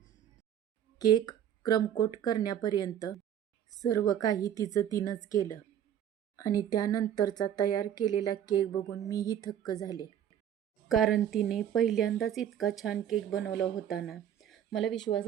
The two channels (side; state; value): left; quieter; 9.9 dB